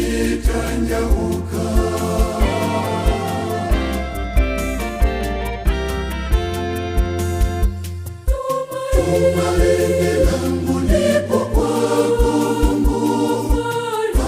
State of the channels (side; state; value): both; identical; correlation 1.00